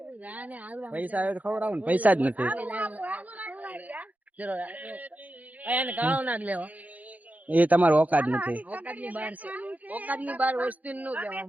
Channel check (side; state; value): left; late; 0.077 ms